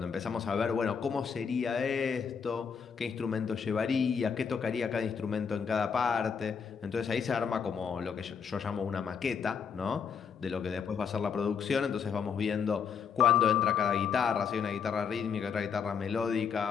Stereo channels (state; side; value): quieter; right; 6.6 dB